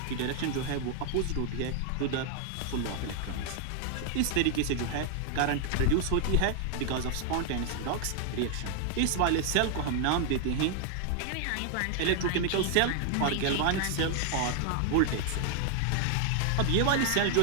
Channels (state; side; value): different; both; correlation 0.00